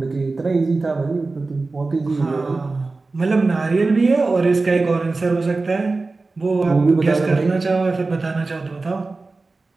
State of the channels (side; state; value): left; quieter; 3.6 dB